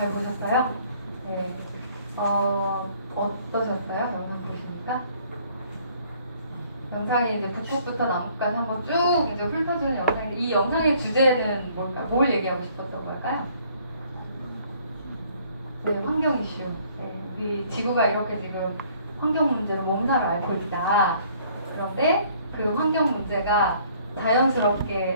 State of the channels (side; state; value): both; inverted; correlation -0.60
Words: 보셨어요? 네, 어떠셨어요? 영상 보시니까? 영상이 이제 북극부터 남극까지 한번 쭉 이제 훑어주는 영상인데, 이 영상의 주제는 뭘까요? 뭘 얘기하고 싶었던 걸까요? 네, 환경 이슈. 네, 우리 지구가 이렇게 지금 환경 문제로 몸살을 앓고 있다. 그런데 그 환경 문제가